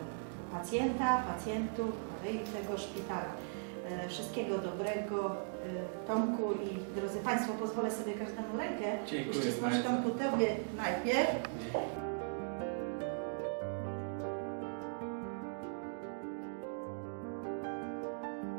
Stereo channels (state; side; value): silent; left; digital silence